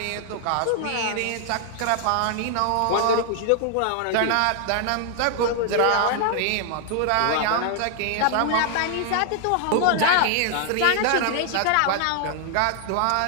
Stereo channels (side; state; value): both; different; correlation 0.00